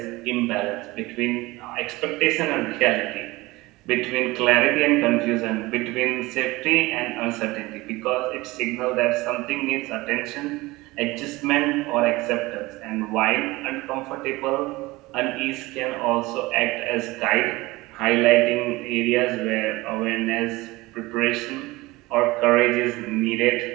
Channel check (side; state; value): left; quieter; 20.9 dB